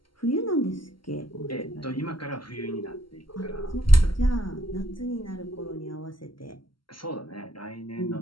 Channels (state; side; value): late; right; 0.73 ms